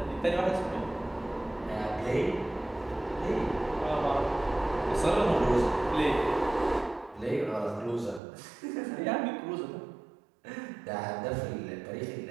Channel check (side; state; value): left; drops out; at 8.2 s